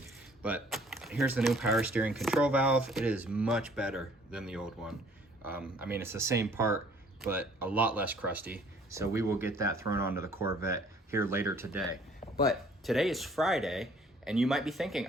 But here's the new power steering control valve. It is much better than the old one. I mean, it's the same part, but a lot less crusty. So we will get that thrown onto the Corvette here later today. But today is Friday, and you might be thinking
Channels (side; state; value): both; normal; correlation 0.58